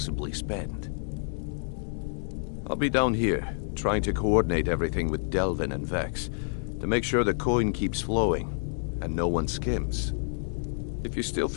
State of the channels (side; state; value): right; silent; 59 dB below the other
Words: spend. I'll be down here, trying to coordinate everything with Delvin and Vex, to make sure the coin keeps flowing, and no one skims. If you still